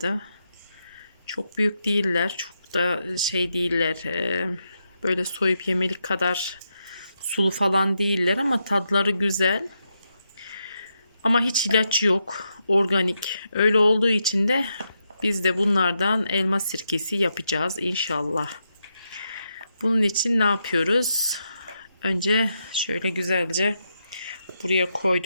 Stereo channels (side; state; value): both; inverted; correlation -0.83